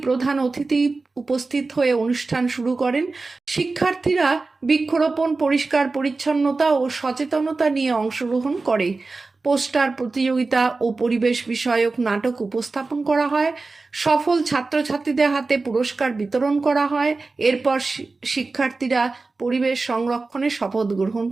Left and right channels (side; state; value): left; quieter; 3.7 dB